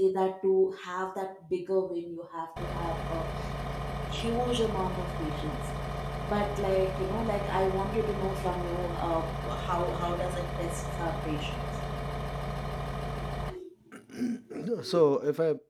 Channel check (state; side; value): identical; both; correlation 1.00